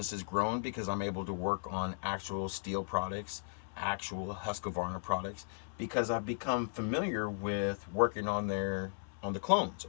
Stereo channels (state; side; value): silent; right; digital silence